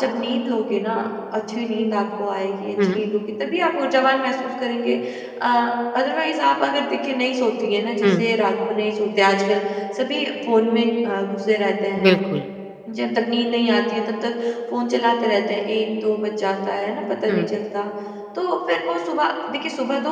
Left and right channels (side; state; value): both; identical; correlation 1.00